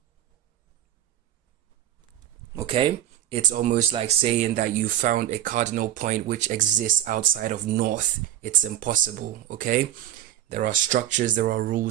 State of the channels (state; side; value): quieter; left; 12.1 dB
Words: Okay, it's almost like saying that you found a cardinal point which exists outside of north. It's impossible. Okay, there are structures, there are